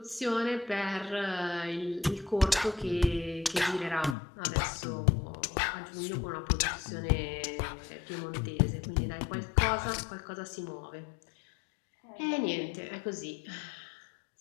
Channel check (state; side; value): drops out; right; at 4.2 s